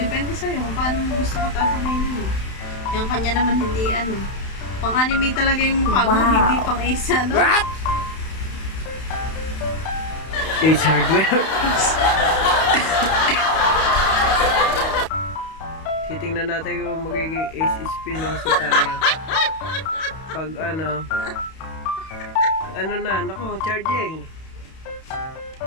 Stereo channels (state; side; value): late; right; 31 ms